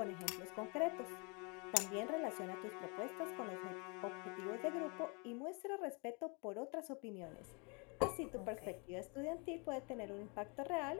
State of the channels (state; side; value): quieter; right; 33.2 dB